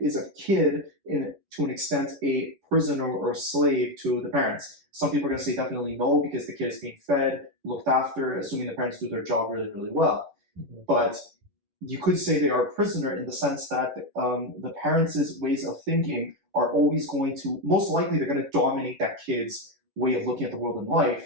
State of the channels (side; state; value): left; late; 11 ms